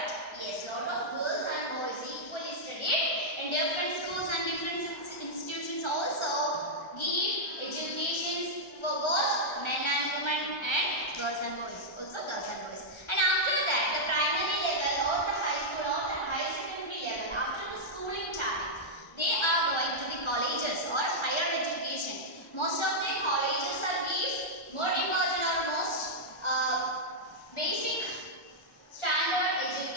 Yes, lot of girls and boys equally studied in different schools and different institutions institutions also give education for both men and women and girls and boys. Also girls and boys. And after that, the primary level or the high school or the higher secondary level, after the schooling time, they are going to the colleges or higher education. Most of the colleges are give more important or most basic standard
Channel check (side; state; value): right; late; 1.3 ms